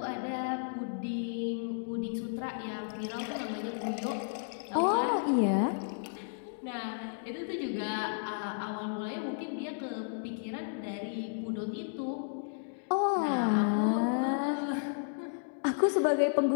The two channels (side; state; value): right; silent; digital silence